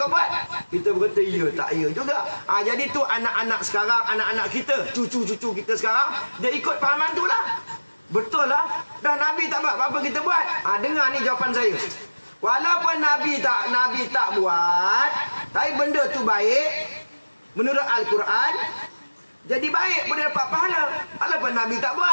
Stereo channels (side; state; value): both; inverted; correlation -1.00